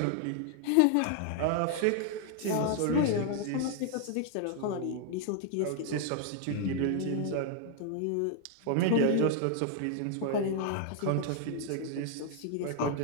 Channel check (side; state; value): both; different; correlation 0.00